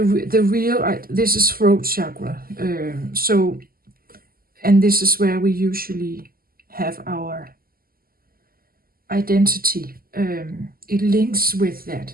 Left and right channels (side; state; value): left; late; 0.42 ms